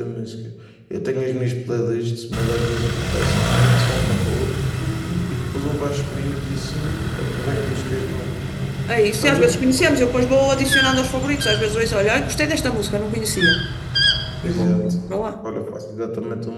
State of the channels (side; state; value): both; identical; correlation 1.00